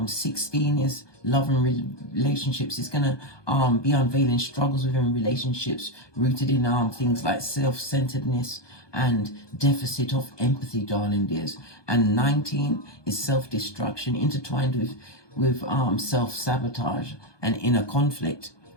16 is love and relationships. It's gonna be unveiling struggles within relationships rooted in things like self-centeredness and deficit of empathy, darling dears. And 19 is self-destruction intertwined with self-sabotage and inner conflict.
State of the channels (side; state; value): right; late; 1.2 ms